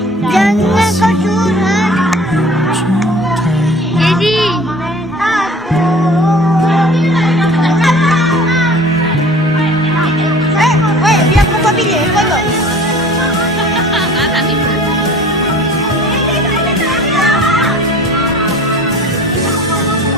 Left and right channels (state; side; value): normal; both; correlation 0.46